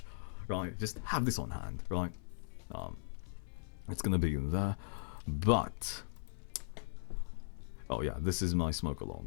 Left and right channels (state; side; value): silent; right; 52 dB below the other